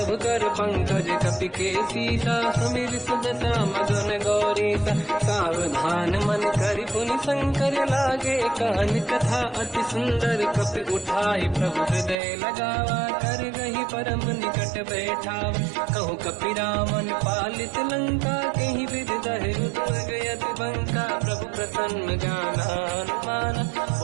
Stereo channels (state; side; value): drops out; left; at 12.2 s